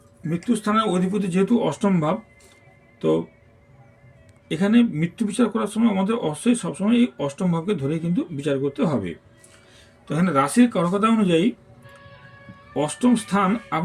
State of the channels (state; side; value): identical; both; correlation 1.00